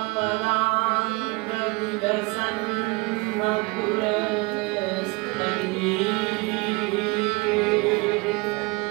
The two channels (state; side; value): quieter; left; 26.4 dB